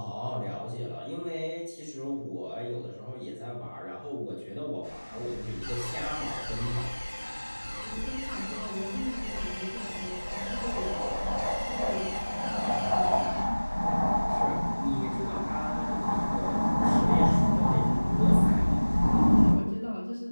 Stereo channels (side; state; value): both; inverted; correlation -1.00